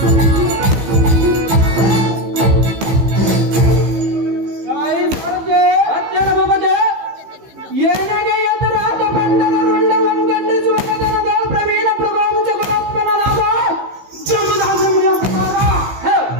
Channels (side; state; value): left; late; 15 ms